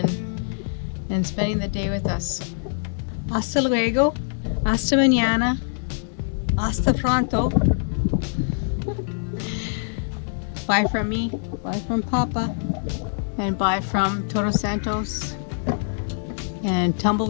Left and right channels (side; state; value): right; silent; digital silence